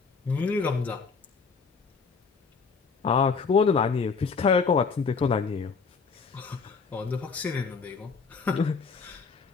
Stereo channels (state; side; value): quieter; right; 5.2 dB